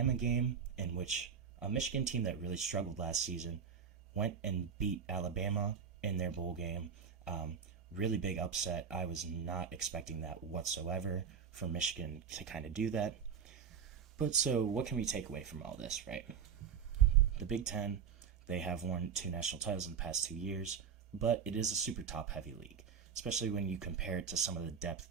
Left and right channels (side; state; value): left; quieter; 7.0 dB